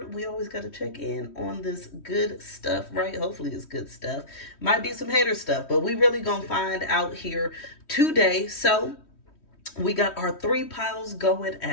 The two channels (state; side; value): late; right; 3.1 ms